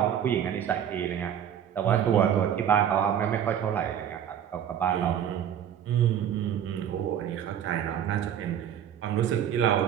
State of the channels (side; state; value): left; quieter; 9.4 dB